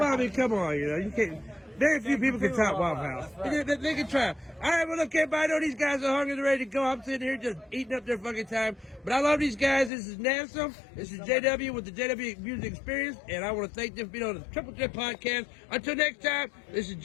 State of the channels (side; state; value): right; drops out; at 9.9 s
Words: I mean, come on, you know, you can't. Very few people can top Waffle House. Right. They can try. All right, well, look, everybody, I know these guys are hungry and ready to go. I'm sitting here just eating up their fucking time. But I love these guys. This is NEZNUM. This is JW with the JW Music Experience. And I want to thank them for being on the Triple Threat podcast. Until next time, this is